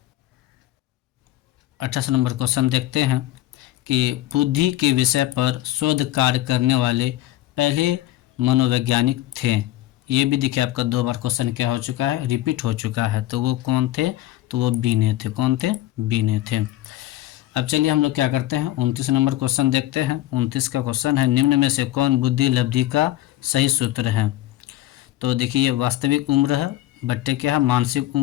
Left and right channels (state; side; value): quieter; right; 15.0 dB